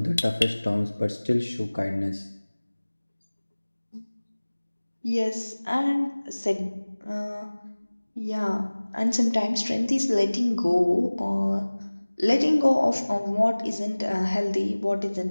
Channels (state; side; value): inverted; both; correlation -1.00